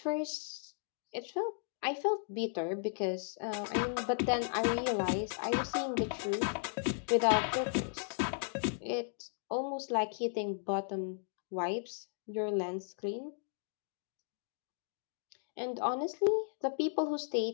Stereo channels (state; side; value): silent; right; digital silence